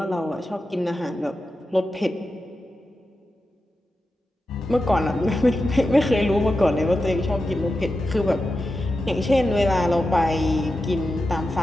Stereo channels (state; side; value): normal; both; correlation 0.90